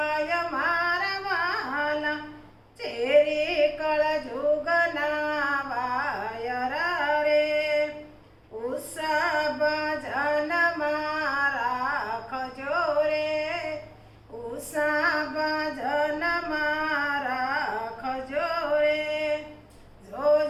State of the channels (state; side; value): identical; both; correlation 1.00